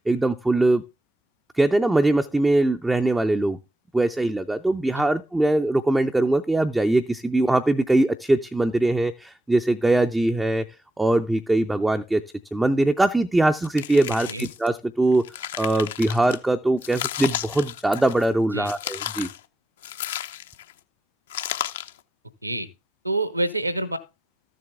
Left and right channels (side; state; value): both; normal; correlation 0.86